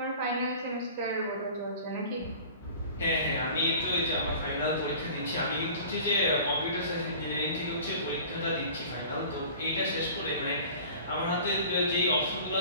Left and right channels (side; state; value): both; inverted; correlation -0.43